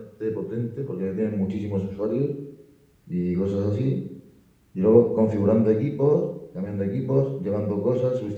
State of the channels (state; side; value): identical; both; correlation 1.00